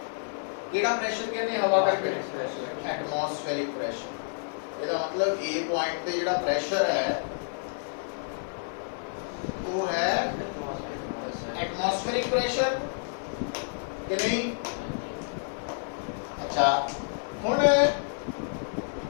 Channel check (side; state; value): right; silent; digital silence